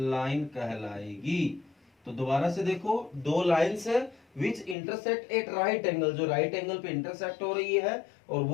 कहलाएगी। तो दोबारा से देखो, दो लाइंस है विच इंटरसेक्ट एट राइट एंगल, जो राइट एंगल पे इंटरसेक्ट हो रही है, और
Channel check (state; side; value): drops out; right; at 4.8 s